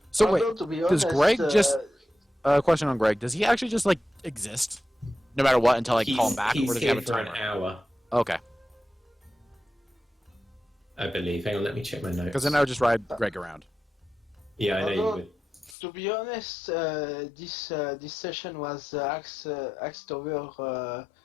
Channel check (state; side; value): drops out; right; at 15.8 s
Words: So wait, does Greg just question on Greg? Does he actually just exist, no matter what, until I call him back, or does he have a timer? An hour. Okay. I believe. Hang on, let me check my notes. Because then I would just ride Greg around. Yeah, I know you would. To be honest, this session was axed over